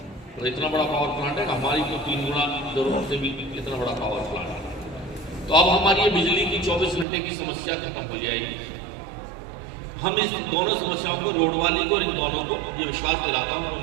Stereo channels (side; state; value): left; drops out; at 7.1 s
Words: तो इतना बड़ा पावर प्लांट है, हमारी तो 3 गुना जरूरत से भी इतना बड़ा पावर प्लांट है। तो अब हमारी ये बिजली की 24 घंटे की समस्या खत्म हो जाएगी। हम इस दोनों समस्याओं को, रोड वाली को और इन दोनों को, ये विश्वास दिलाता हूँ मैं